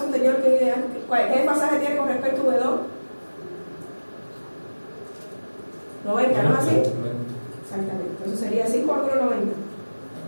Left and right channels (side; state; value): both; inverted; correlation -1.00